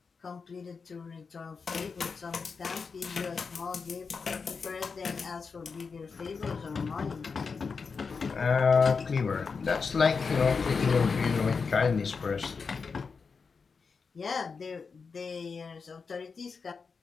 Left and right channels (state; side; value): quieter; right; 5.1 dB